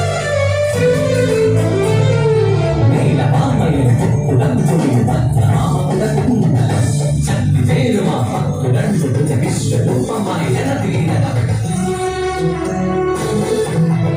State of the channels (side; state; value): both; identical; correlation 1.00